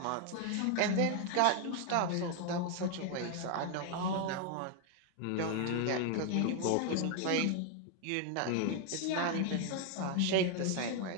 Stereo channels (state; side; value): different; both; correlation 0.01